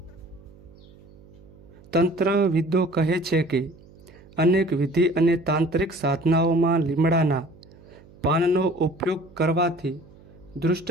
તંત્રવિદો કહે છે કે અનેક વિધિ અને તાંત્રિક સાધનાઓમાં લીમડાના પાનનો ઉપયોગ કરવાથી દુષ્ટ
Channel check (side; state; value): right; noise; hum, 24 dB below the sound